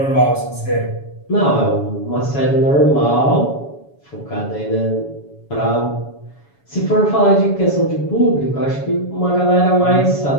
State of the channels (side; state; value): right; late; 7.1 ms